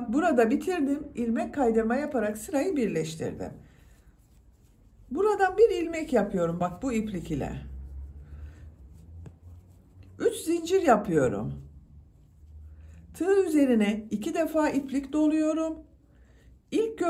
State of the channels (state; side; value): identical; both; correlation 1.00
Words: burada bitirdim. İlmek kaydırma yaparak sırayı birleştirdim. Buradan bir ilmek yapıyorum bak bu iplik ile. 3 zincir yapıyorum. Tığ üzerine 2 defa iplik doluyorum. İlk